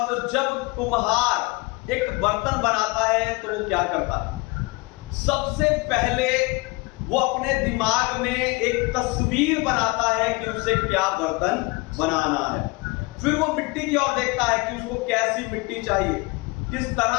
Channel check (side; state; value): right; quieter; 25.6 dB